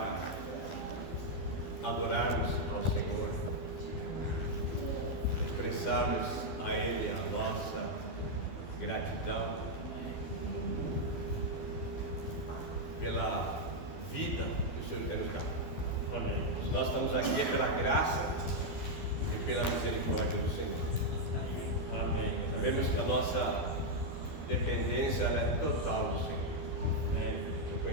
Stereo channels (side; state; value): right; late; 12 ms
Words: adorarmos ao Senhor, expressarmos a Ele a nossa gratidão pela vida que o Senhor quer nos dar. Amém. Nós estamos aqui é pela graça e pela misericórdia do Senhor. Amém. Sabemos que a nossa dependência ela é total do Senhor.